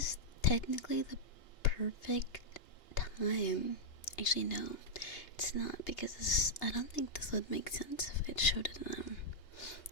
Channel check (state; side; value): late; right; 2.8 ms